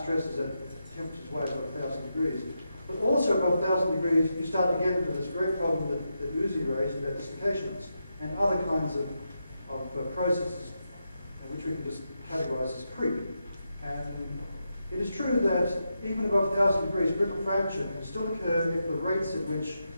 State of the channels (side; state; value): both; inverted; correlation -0.86